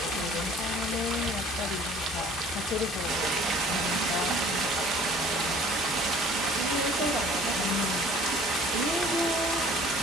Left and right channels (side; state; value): both; normal; correlation 0.51